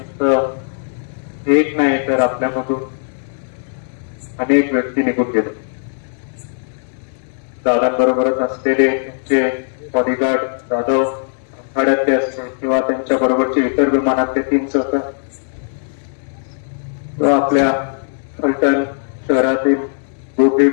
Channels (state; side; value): silent; right; 67 dB below the other